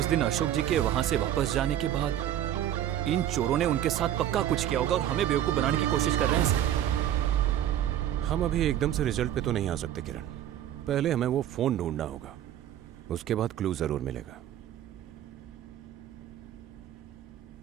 दिन अशोक जी के वहां से वापस जाने के बाद इन चोरों ने उनके साथ पक्का कुछ किया होगा और हमें बेवकूफ बनाने की कोशिश कर रहे हैं सर। हम अभी एकदम से रिजल्ट पे तो नहीं आ सकते किरण। पहले हमें वो फोन ढूंढना होगा, उसके बाद क्लू जरूर मिलेगा।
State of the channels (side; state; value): left; quieter; 11.4 dB